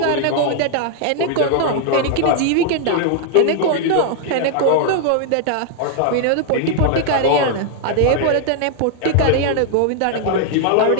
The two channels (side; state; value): both; different; correlation 0.00